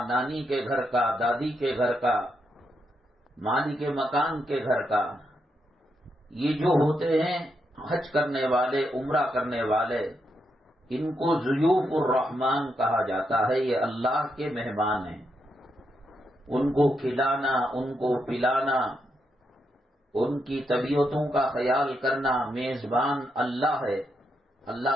نانی کے گھر کا، دادی کے گھر کا، مالک مکان کے گھر کا، یہ جو ہوتے ہیں حج کرنے والے، عمرہ کرنے والے، ان کو ضیوف الرحمان کہا جاتا ہے۔ یہ اللہ کے مہمان ہیں، ان کو کھلانا، ان کو پلانا، ان کی طبیعتوں کا خیال کرنا، میزبان اللہ ہے، اللہ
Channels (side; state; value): both; normal; correlation 0.82